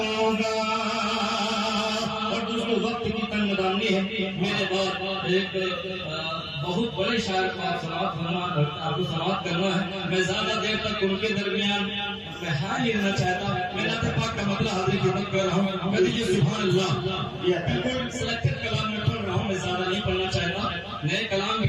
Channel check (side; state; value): both; identical; correlation 1.00